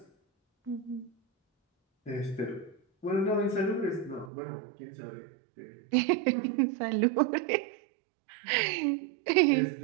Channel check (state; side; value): drops out; left; at 4.3 s